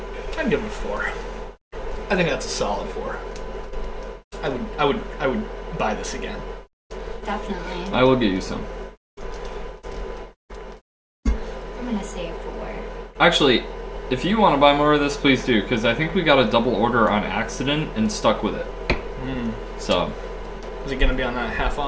I'd give it a 4. I think that's a solid 4. I would buy this again. Definitely. I will get you some. I'm gonna say a 4. Actually, if you want to buy more of this, please do, because I think we got a double order on accident and stuck with it. So. Is it gonna be on that half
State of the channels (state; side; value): identical; both; correlation 1.00